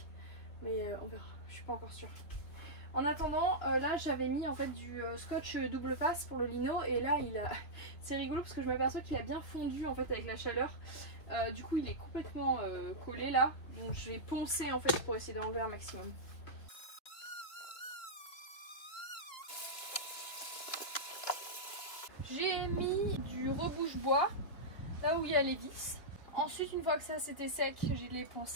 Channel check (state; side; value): late; right; 2.9 ms